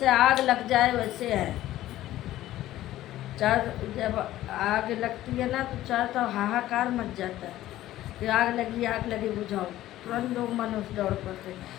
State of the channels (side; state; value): right; quieter; 14.4 dB